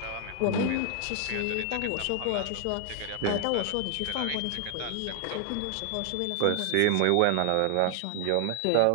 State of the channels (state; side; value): different; both; correlation 0.00